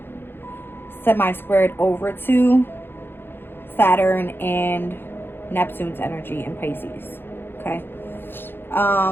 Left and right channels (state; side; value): late; right; 0.10 ms